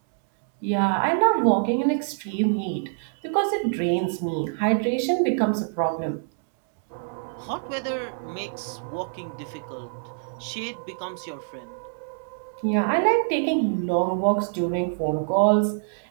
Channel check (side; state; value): left; silent; 61 dB below the other